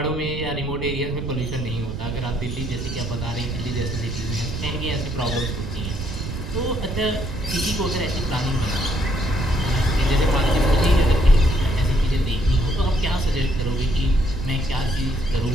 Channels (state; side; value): noise; right; rumble, 6 dB below the sound